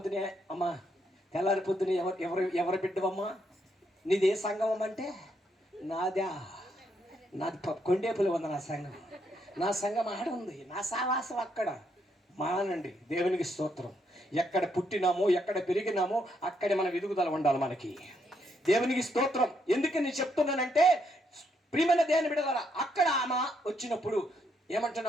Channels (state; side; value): normal; both; correlation 0.76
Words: అమ్మా, తెల్లారి పొద్దునే ఎవరు బిడ్డవమ్మా? నీది ఏ సంఘం అంటే? నాది కొండేపులు ఉంది నా సంఘం. నా సంఘం ఆడ ఉంది, నా సావాసం అక్కడ. మానండి. దేవునికి స్తోత్రం. ఎక్కడ పుట్టినామో, ఎక్కడ పెరిగినామో అక్కడే మన ఎదుగుదల ఉండాలి మనకి. దేవునికి స్తోత్రం. ఎందుకు నేను చెప్తున్నానంటే, ప్రియమైన దేవుని బిడ్డలారా, అక్కడ ఆమె వచ్చినప్పుడు